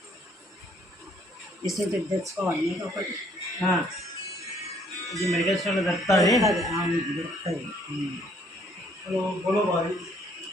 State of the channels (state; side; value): normal; both; correlation 0.64